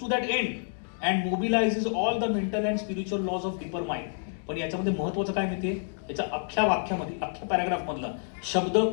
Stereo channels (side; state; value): right; silent; digital silence